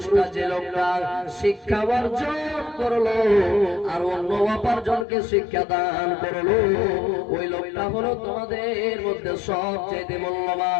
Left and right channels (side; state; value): right; drops out; at 5.1 s